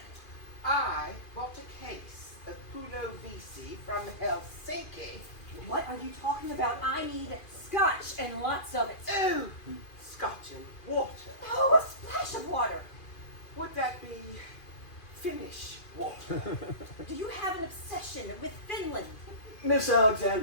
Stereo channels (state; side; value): late; right; 2.4 ms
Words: I bought a case of Pulo Vici from Helsinki. What are you talking about? I need scotch and lots of it. Oh, scotch and water. Oh, a splash of water. Would that be Finnish water? Do you have an obsession with Finland? Miss